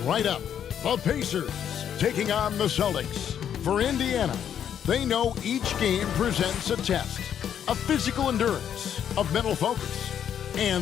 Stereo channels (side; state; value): right; quieter; 9.1 dB